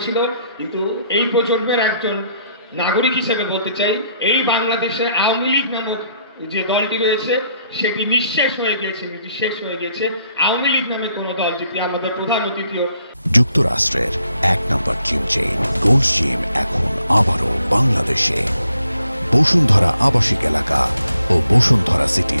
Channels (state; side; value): inverted; both; correlation -0.71